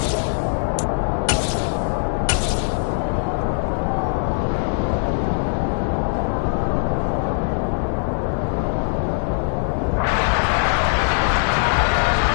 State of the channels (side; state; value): right; silent; digital silence